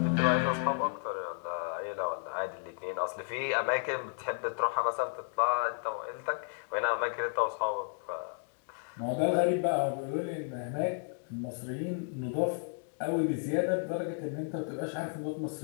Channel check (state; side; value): silent; right; digital silence